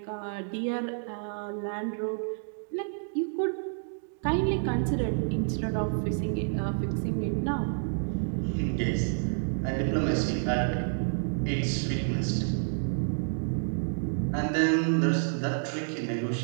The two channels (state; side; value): silent; left; digital silence